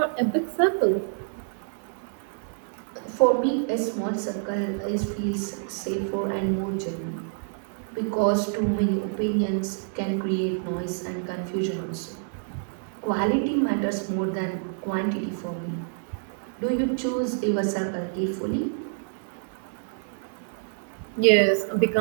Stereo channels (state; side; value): silent; left; digital silence